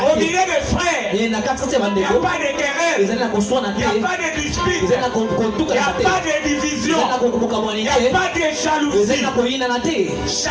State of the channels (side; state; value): both; identical; correlation 1.00